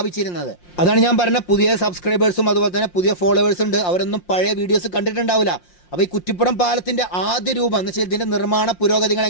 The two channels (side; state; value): right; late; 5.7 ms